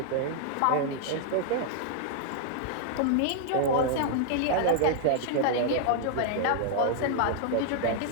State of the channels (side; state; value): both; different; correlation 0.00